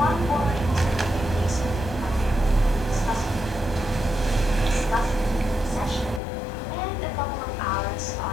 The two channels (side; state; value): right; drops out; at 6.2 s